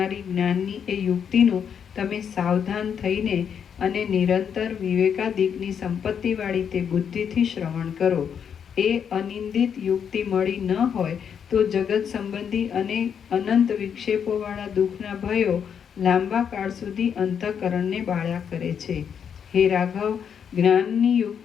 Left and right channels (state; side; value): quieter; right; 7.7 dB